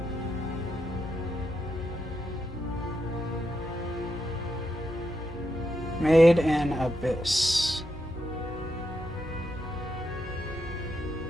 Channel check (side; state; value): both; normal; correlation 0.83